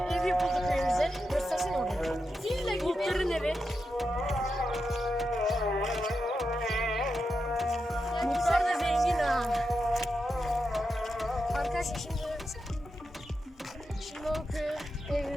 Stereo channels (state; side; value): normal; both; correlation 0.87